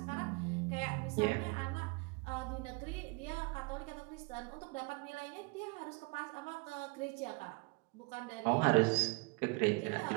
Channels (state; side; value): quieter; left; 29.0 dB